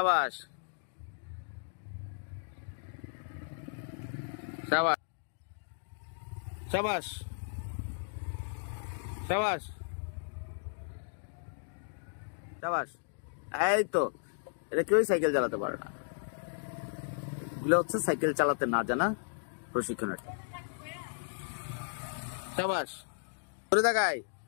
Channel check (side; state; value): right; silent; digital silence